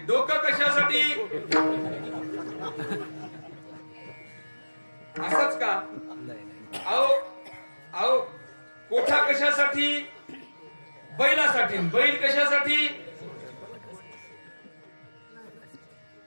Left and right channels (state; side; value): inverted; both; correlation -1.00